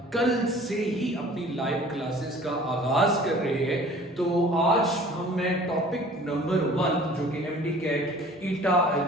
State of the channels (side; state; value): both; normal; correlation 0.48